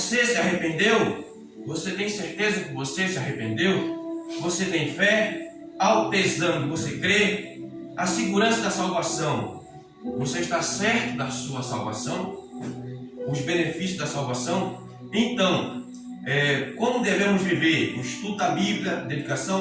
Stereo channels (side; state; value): both; identical; correlation 1.00